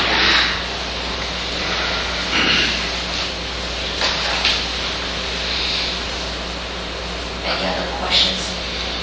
Any other questions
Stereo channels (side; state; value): both; identical; correlation 1.00